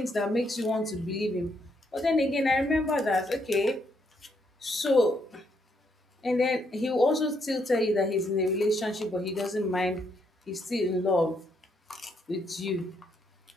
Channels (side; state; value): both; normal; correlation 0.75